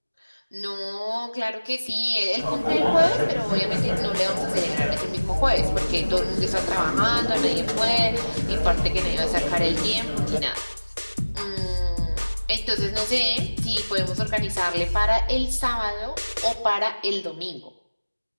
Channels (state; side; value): inverted; both; correlation -1.00